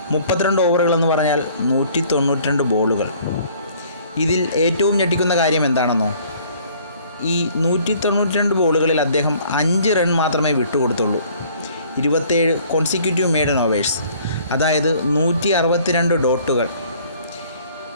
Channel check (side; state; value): both; inverted; correlation -0.56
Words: 32 ഓവറുകളെന്ന് പറഞ്ഞാൽ 192 ബോളുകൾ. ഇതിൽ ഏറ്റവും ഞെട്ടിക്കുന്ന കാര്യം എന്താണെന്നോ? ഈ 192 ബോളുകളിൽ അദ്ദേഹം 5 റൺ മാത്രമേ വിട്ടുകൊടുത്തുള്ളൂ. 27 കോൺസിക്യൂട്ടീവ് മെയ്ഡൻ ഓവേഴ്സ്, അതായത് 162 ഡോട്ടുകൾ.